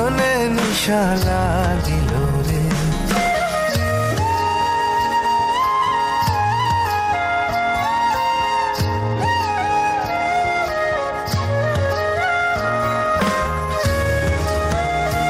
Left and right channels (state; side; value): identical; both; correlation 1.00